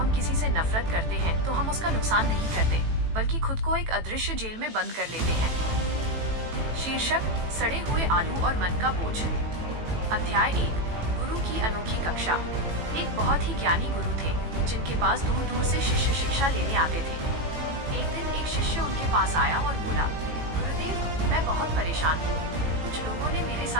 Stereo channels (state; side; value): late; left; 18 ms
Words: किसी से नफरत करते हैं तो हम उसका नुकसान नहीं करते, बल्कि खुद को एक अदृश्य जेल में बंद कर लेते हैं। शीर्षक: सड़े हुए आलू और मन का बोझ। अध्याय 1: गुरु की अनोखी कक्षा। एक बहुत ही ज्ञानी गुरु थे, जिनके पास दूर दूर से शिष्य शिक्षा लेने आते थे। एक दिन एक शिष्य उनके पास आया और बोला, गुरुदेव, मैं बहुत परेशान हूँ। कुछ लोगों ने मेरे